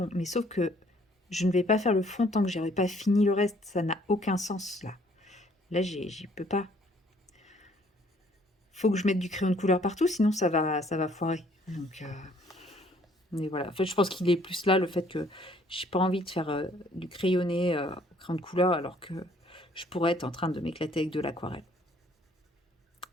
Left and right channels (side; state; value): both; normal; correlation 0.62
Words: Mais sauf que je ne vais pas faire le fond tant que j'aurai pas fini le reste. Ça n'a aucun sens là. Là, j'y peux pas. Faut que je mette du crayon de couleur partout, sinon ça va foirer. Donc, mais voilà. En fait, je pense qu'il est plus là le fait que j'ai pas envie de faire du crayonné au crayon de couleur alors que je pourrais être en train de m'éclater avec de l'aquarelle.